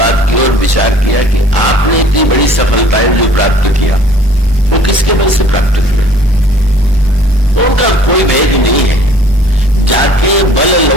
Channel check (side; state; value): both; normal; correlation 0.53